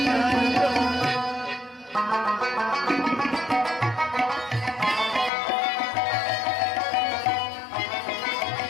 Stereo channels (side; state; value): right; drops out; at 5.3 s